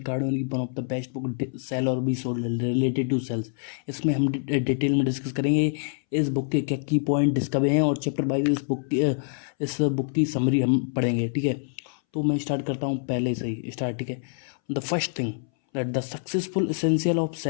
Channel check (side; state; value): right; silent; 61 dB below the other